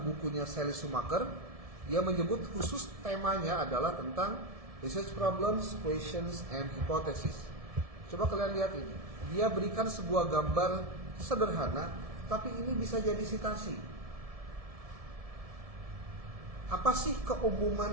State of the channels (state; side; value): late; left; 1.7 ms